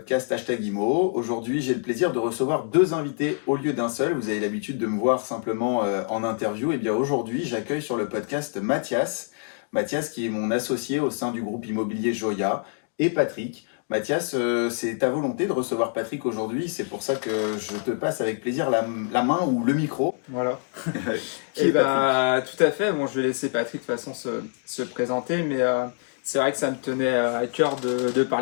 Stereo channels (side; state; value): right; silent; 61 dB below the other